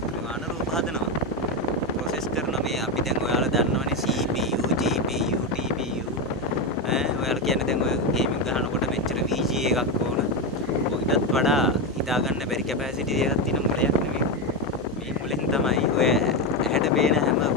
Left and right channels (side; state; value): both; normal; correlation 0.11